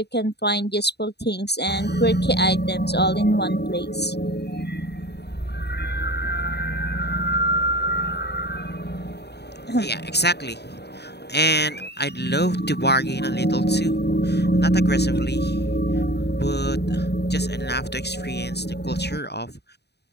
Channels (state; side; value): late; right; 0.48 ms